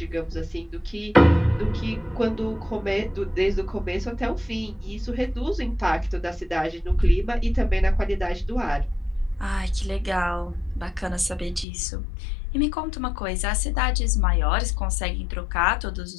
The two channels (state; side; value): drops out; right; at 11.7 s